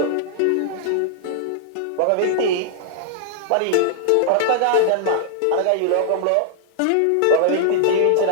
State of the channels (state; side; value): different; both; correlation -0.01